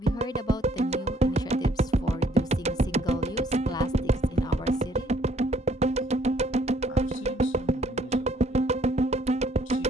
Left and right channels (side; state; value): both; normal; correlation 0.64